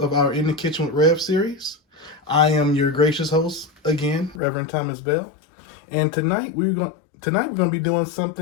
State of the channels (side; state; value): right; drops out; at 4.4 s